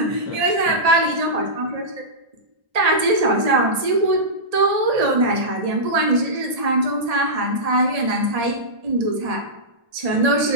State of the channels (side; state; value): left; late; 1.7 ms